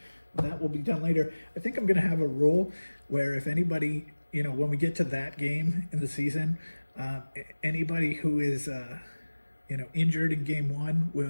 That will be done later. I think I'm going to have a rule where if anybody, when we get to that game in the season, anybody who is, injured in game 1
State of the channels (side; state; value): both; inverted; correlation -1.00